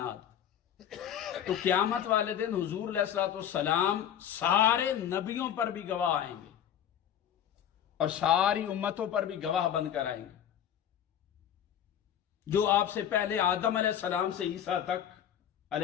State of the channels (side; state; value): right; quieter; 9.8 dB